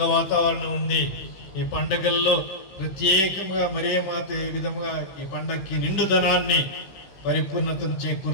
వాతావరణం ఉంది. ఈ పండగల్లో ప్రత్యేకంగా మరే మాత ఏ విధంగా ఈ పండగకి నిండుదనాన్ని, పరిపూర్ణతను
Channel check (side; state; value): right; late; 15 ms